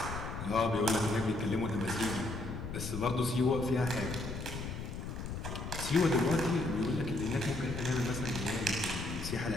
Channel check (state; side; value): noise; left; rumble, 6 dB below the sound